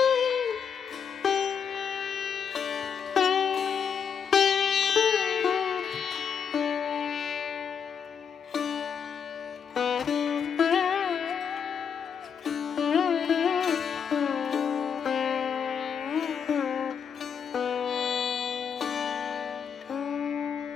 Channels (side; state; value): right; quieter; 7.1 dB